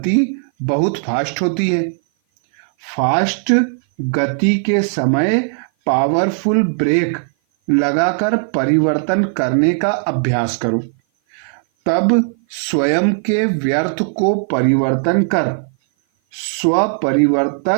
बहुत फास्ट होती है। फास्ट गति के समय पावरफुल ब्रेक लगाकर परिवर्तन करने का अभ्यास करो, तब स्वयं के व्यर्थ को परिवर्तन कर स्व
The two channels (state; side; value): silent; left; 56 dB below the other